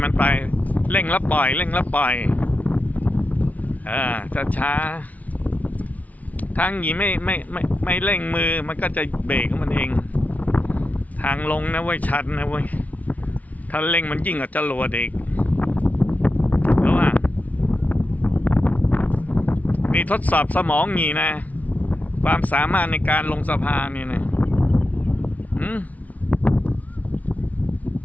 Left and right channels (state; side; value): late; right; 0.071 ms